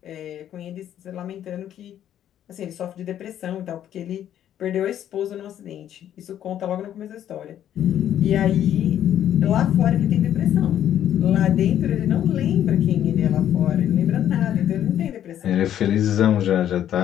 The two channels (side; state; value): right; quieter; 10.8 dB